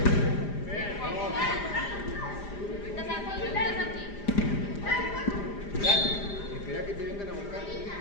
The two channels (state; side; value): late; right; 5.0 ms